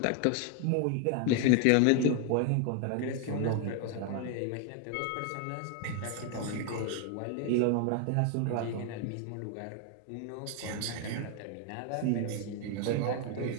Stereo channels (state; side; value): different; both; correlation 0.01